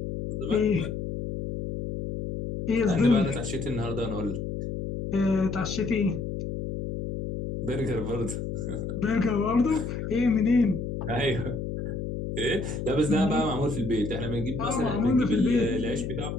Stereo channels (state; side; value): noise; left; hum, 5 dB below the sound